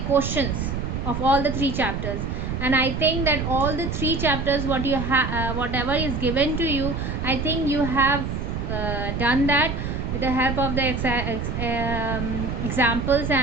of all the 3 chapters. And I think that all the 3 chapters whatever is given to you, I think you have done that with the help of the examples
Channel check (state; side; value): noise; right; rumble, 3 dB below the sound